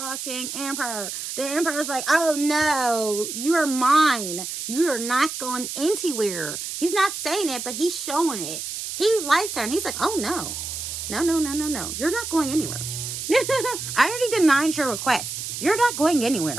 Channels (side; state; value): right; noise; hiss, 6 dB below the sound